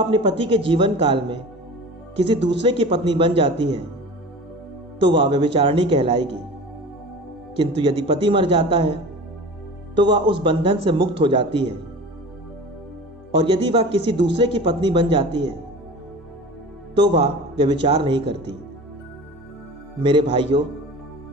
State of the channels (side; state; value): both; normal; correlation 0.36